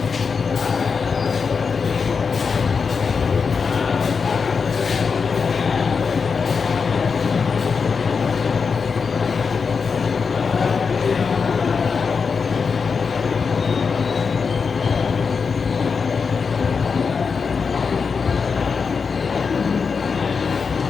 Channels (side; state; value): right; quieter; 5.5 dB